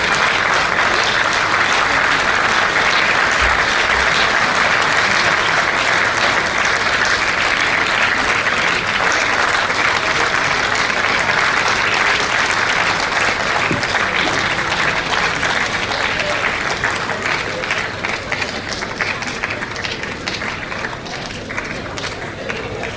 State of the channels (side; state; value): both; identical; correlation 1.00